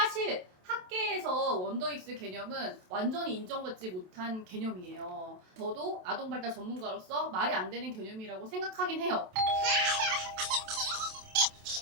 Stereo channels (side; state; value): left; late; 27 ms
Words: 사실 학계에서 원더익스 개념은 완전히 인정받지 못한 개념이에요. 저도 아동발달 전문가로서 말이 안 되는 개념이라고 생각하긴 해요.